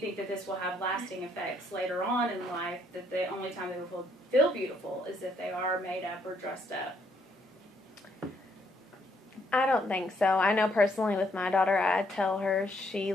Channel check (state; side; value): normal; both; correlation 0.70